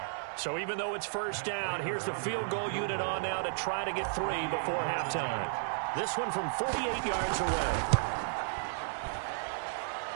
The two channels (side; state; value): left; silent; 56 dB below the other